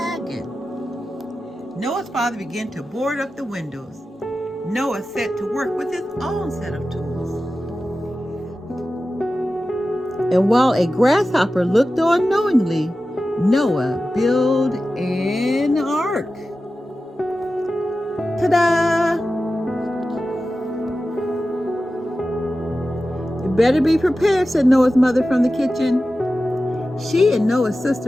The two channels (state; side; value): normal; both; correlation 0.94